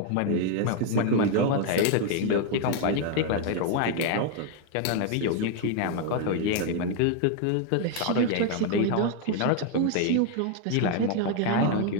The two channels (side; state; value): both; different; correlation 0.00